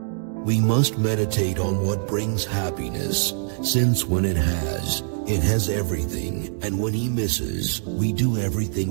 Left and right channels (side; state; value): left; silent; digital silence